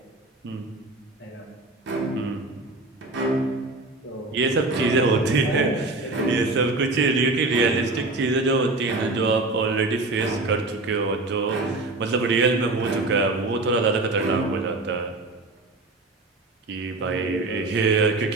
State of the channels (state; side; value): quieter; left; 3.1 dB